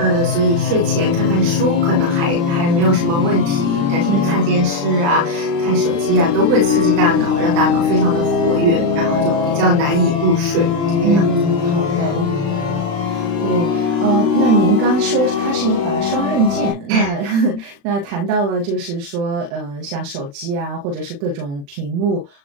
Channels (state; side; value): late; left; 35 ms